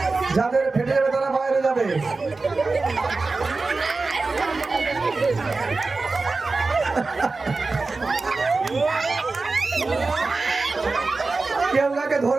যাদের ফেটে যাবে তারা বাইরে যাবে। কেউ কাকে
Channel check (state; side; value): quieter; left; 3.8 dB